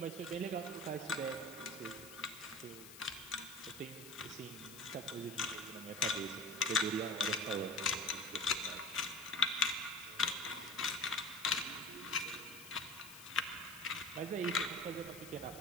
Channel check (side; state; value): left; noise; hiss, 14 dB below the sound